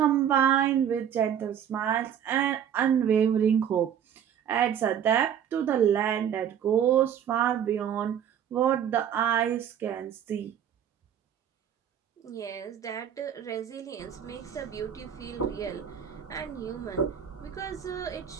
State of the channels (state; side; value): quieter; left; 9.1 dB